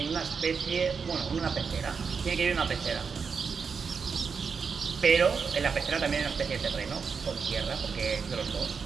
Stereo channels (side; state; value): left; quieter; 5.7 dB